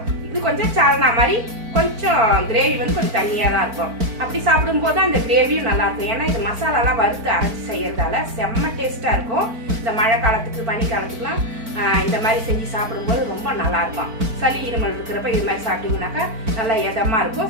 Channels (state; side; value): late; left; 4.5 ms